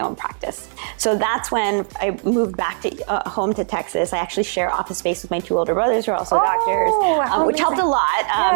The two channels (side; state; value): left; silent; 64 dB below the other